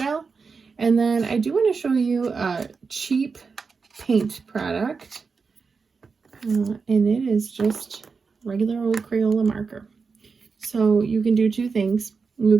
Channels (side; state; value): left; quieter; 5.0 dB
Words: And then I do want to show you a cheap paint product. And it is just regular old Crayola marker. So you can do two things. You